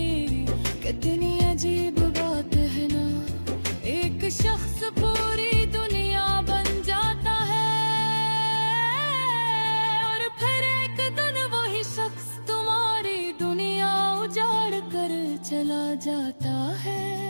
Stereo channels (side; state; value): both; inverted; correlation -1.00